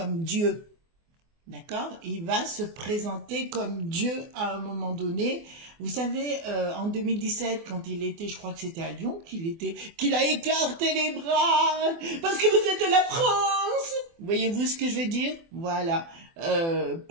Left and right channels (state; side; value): late; left; 24 ms